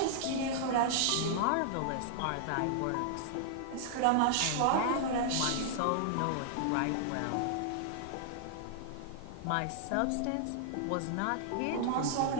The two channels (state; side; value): different; both; correlation -0.01